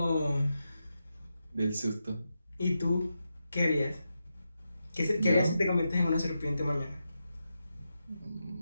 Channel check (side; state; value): both; inverted; correlation -0.87